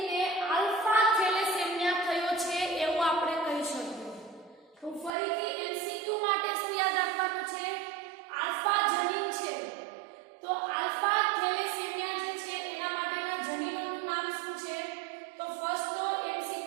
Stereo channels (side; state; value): left; drops out; at 5.1 s